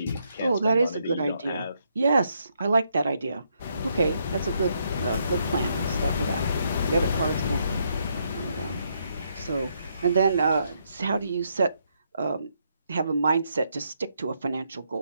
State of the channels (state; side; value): inverted; both; correlation -0.76